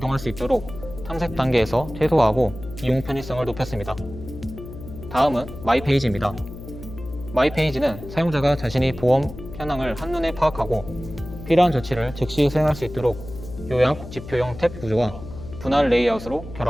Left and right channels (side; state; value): left; noise; hum, 13 dB below the sound